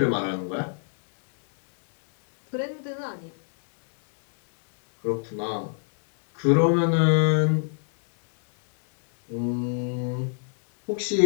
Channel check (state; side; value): silent; right; digital silence